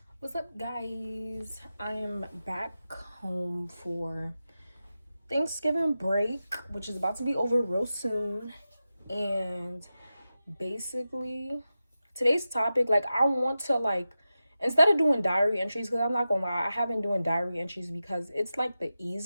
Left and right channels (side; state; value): both; inverted; correlation -0.92